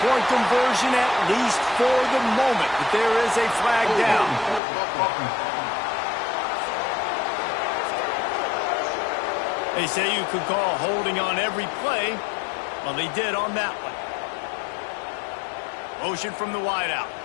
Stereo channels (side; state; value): right; drops out; at 4.6 s